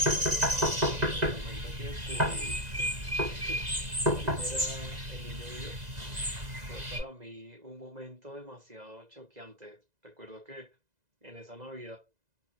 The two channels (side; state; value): left; late; 2.0 ms